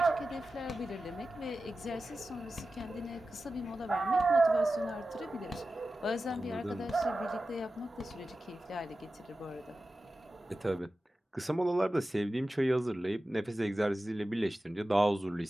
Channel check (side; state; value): both; normal; correlation 0.94